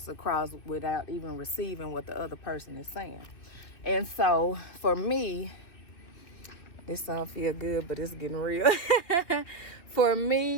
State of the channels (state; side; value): late; right; 2.6 ms